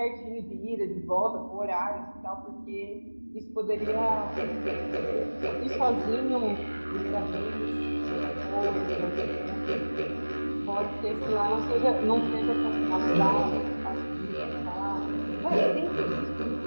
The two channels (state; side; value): inverted; both; correlation -1.00